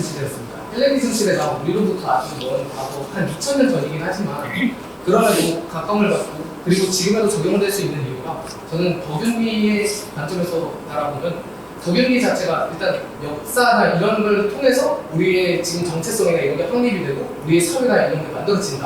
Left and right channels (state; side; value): identical; both; correlation 1.00